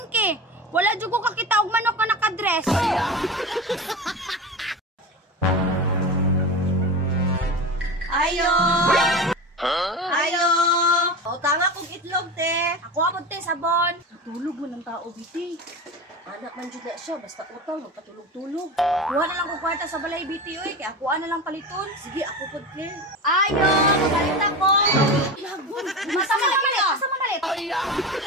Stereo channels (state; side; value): normal; both; correlation 0.26